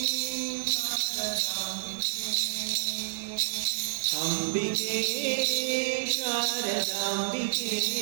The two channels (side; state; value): left; silent; digital silence